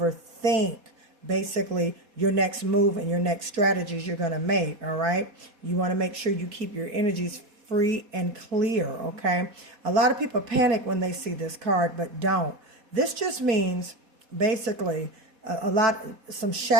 basically your next move and your next strategies you're going to make, all right? You want to make sure you keep your energies free and clear, okay? A lot of people panic when they see this card, but don't. This just means basically some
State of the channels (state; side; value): late; left; 4.2 ms